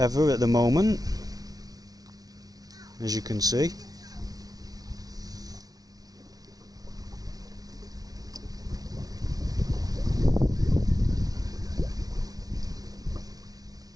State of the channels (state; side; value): late; left; 0.18 ms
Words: at the moment, as you can see.